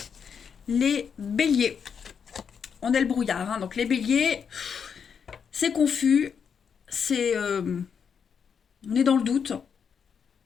Les béliers. On est le brouillard, hein, donc les béliers, c'est confus, on est dans le doute,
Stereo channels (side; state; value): right; quieter; 6.9 dB